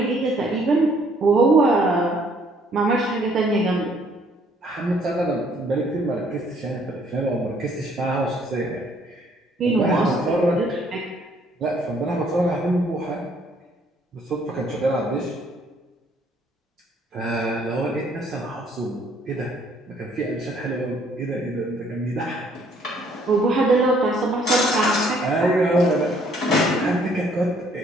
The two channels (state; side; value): normal; both; correlation 0.64